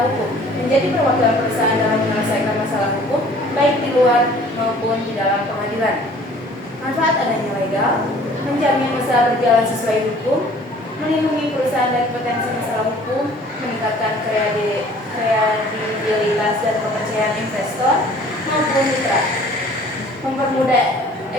hukum. Menjadi perwakilan perusahaan dalam menyelesaikan masalah hukum, baik di luar maupun di dalam pengadilan. Manfaat adanya legal, menjamin usaha berjalan sesuai hukum, melindungi perusahaan dari potensi masalah hukum, meningkatkan kredibilitas dan kepercayaan investor maupun mitra, mempermudah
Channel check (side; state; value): both; normal; correlation 0.51